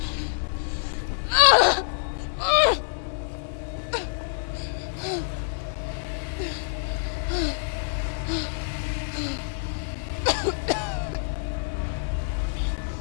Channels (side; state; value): right; silent; digital silence